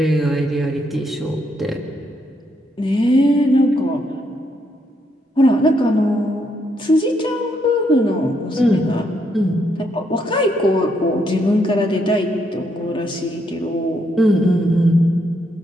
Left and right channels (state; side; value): normal; both; correlation 0.76